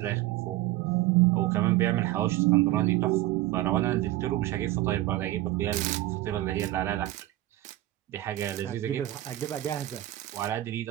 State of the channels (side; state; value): left; quieter; 15.8 dB